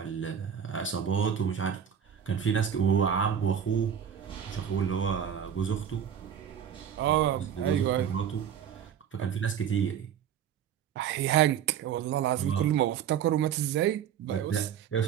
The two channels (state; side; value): quieter; left; 8.7 dB